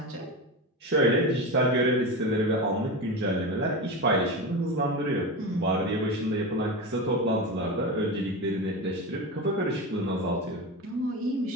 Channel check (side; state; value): both; normal; correlation 0.22